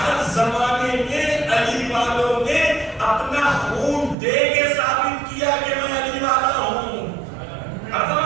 زمانے میں علی والوں نے اپنا خون دے کے ثابت کیا کہ میں علی والا ہوں، ہر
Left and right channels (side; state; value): left; drops out; at 4.2 s